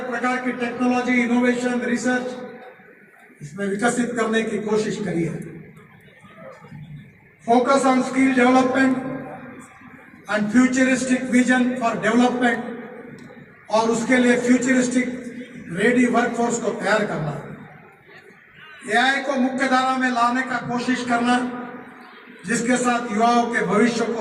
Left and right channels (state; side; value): identical; both; correlation 1.00